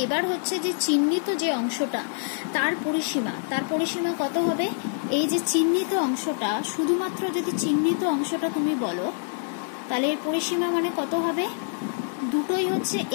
এবার হচ্ছে যে চিহ্নিত যে অংশটা তার পরিসীমা কত হবে? এই যে চিহ্নিত অংশটা, শুধুমাত্র যদি চিহ্নিত অংশটা তুমি বলো তাহলে এর পরিসীমা মানে কত হবে? দুটোই হচ্ছে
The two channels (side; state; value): right; silent; 61 dB below the other